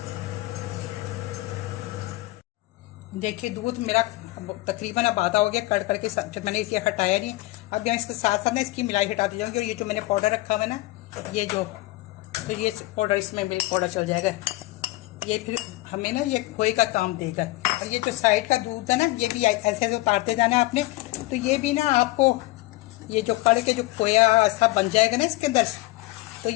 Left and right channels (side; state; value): right; quieter; 19.6 dB